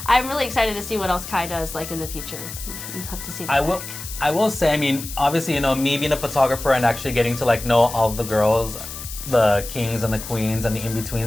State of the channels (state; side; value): noise; left; hiss, 10 dB below the sound